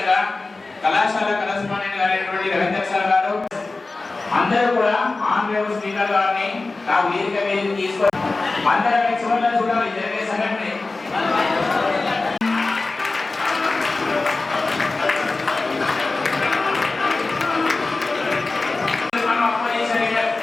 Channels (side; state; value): right; quieter; 3.5 dB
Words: కళాశాల కరెస్పాండెంట్ గారైనటువంటి రవీంద్ర సార్ గారు అందరూ కూడా ఆన్ స్పీకర్ గారిని నా వేదిక మీద తీసుకొని అందరూ చివరిలో చూడాలి జరిగే సంఘటన.